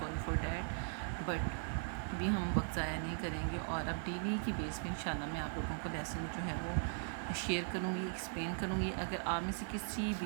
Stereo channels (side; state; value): left; silent; 52 dB below the other